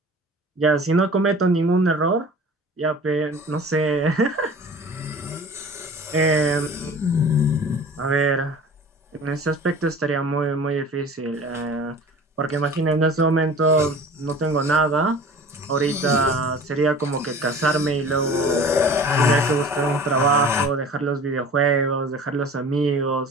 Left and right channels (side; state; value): both; normal; correlation 0.42